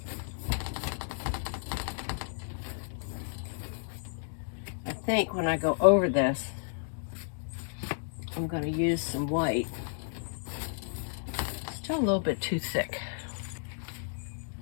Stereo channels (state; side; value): silent; right; digital silence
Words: I think when I go over this, I'm going to use some white. Still a little bit too thick.